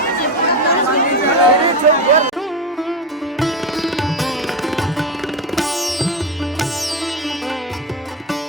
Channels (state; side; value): normal; both; correlation 0.16